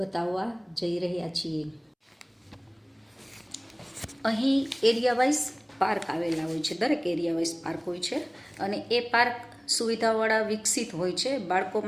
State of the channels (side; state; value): both; identical; correlation 1.00